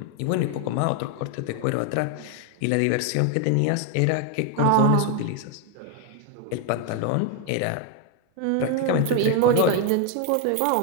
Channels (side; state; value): both; different; correlation 0.01